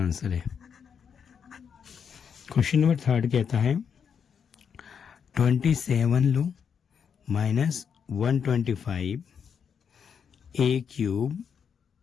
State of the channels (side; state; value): right; quieter; 7.0 dB